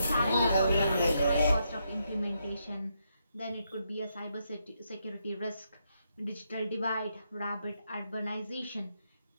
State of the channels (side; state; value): both; inverted; correlation -0.80